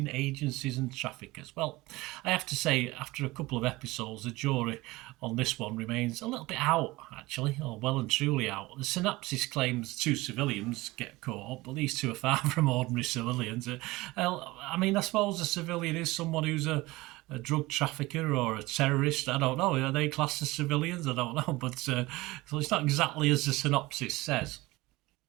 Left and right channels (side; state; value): left; quieter; 20.5 dB